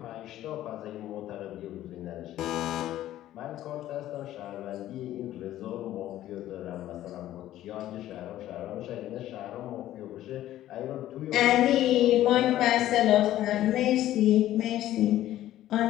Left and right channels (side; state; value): right; quieter; 13.5 dB